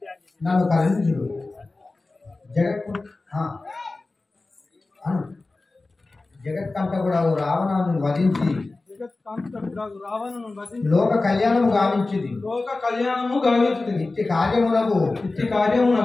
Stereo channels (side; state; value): right; quieter; 3.3 dB